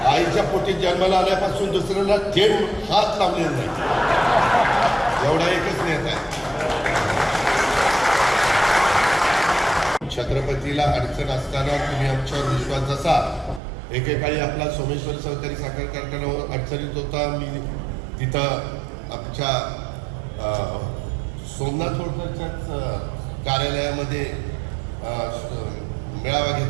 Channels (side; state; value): left; drops out; at 13.6 s